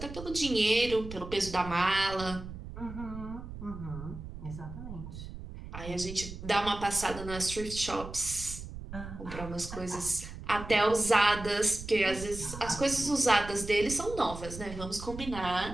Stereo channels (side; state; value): right; noise; rumble, 11 dB below the sound